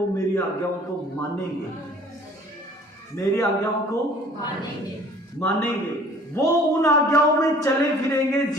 मेरी आज्ञाओं को मानेंगे, मेरी आज्ञाओं को मानेंगे। वो उन आज्ञाओं में चले फिरेंगे,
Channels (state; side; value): normal; both; correlation 0.52